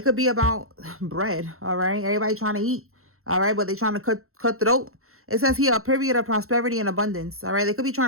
could be about bread. All right. Everybody trying to eat. All right. But they trying to cut throat. It says here a period of prosperity and abundance. All right. They could be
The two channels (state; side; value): late; left; 0.63 ms